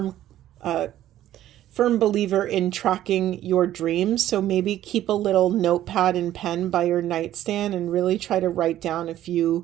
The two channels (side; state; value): left; quieter; 12.9 dB